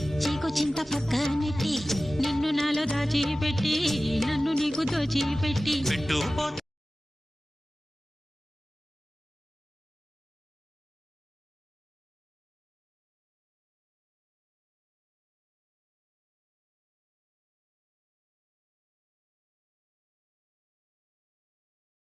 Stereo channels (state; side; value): normal; both; correlation 0.96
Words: చీకు చింత పక్క నెట్టి నిన్ను నాలో దాచిపెట్టి నన్ను నీకు దోచిపెట్టి